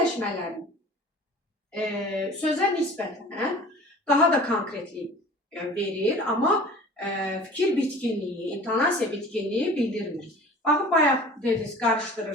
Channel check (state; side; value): normal; both; correlation 0.43